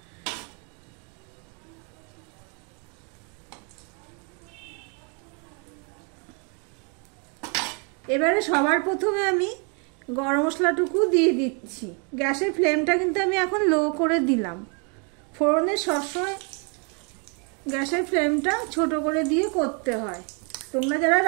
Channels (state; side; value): quieter; left; 36.7 dB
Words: এবারে সবার প্রথমে আমি গরম মশলাটুকু দিয়ে দিচ্ছি। গ্যাসের ফ্লেমটা কিন্তু আমি এখন লো করে দিলাম। ফোড়নে সবসময় গ্যাসের ফ্লেমটা ছোট করে দিয়ে করতে হয়। তোমরা যারা